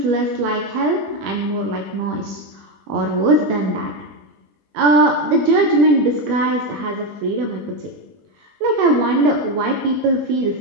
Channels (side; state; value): left; late; 21 ms